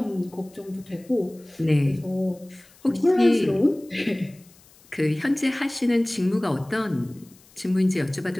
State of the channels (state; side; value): noise; left; hiss, 27 dB below the sound